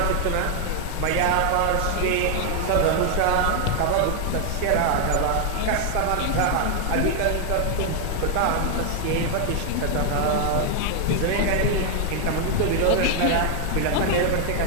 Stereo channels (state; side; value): different; both; correlation 0.00